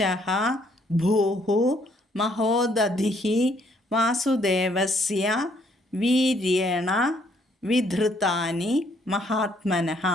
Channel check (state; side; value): normal; both; correlation 0.67